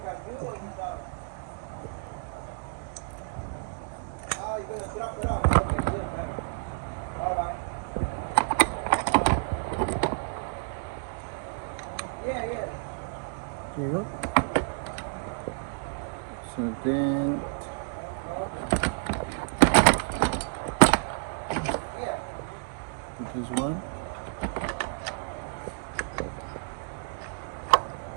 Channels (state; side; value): silent; left; digital silence